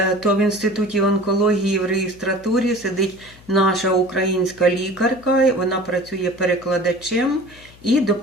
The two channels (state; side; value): noise; left; hum, 24 dB below the sound